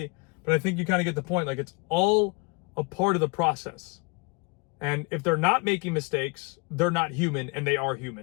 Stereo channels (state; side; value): quieter; right; 29.6 dB